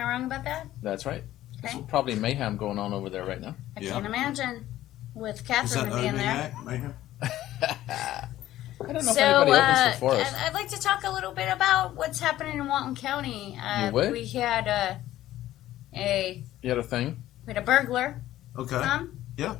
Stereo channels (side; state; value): right; quieter; 14.0 dB